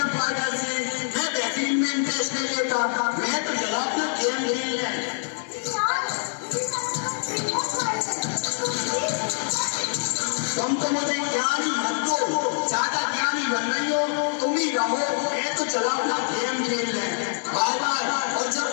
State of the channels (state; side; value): silent; right; digital silence